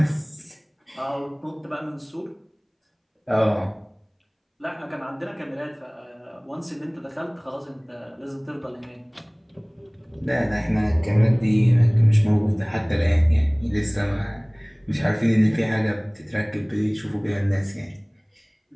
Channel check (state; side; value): identical; both; correlation 1.00